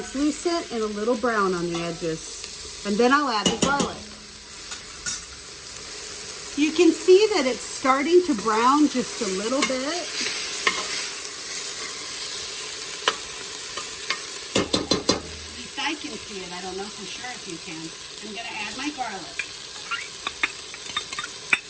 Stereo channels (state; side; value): identical; both; correlation 1.00